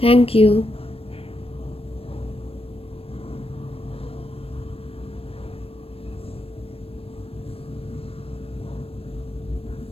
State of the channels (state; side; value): late; right; 0.28 ms